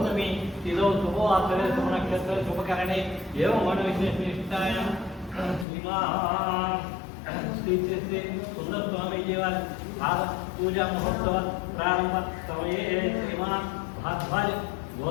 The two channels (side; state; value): right; drops out; at 5.7 s